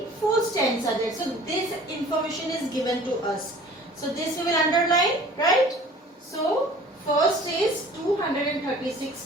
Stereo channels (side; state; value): both; normal; correlation 0.47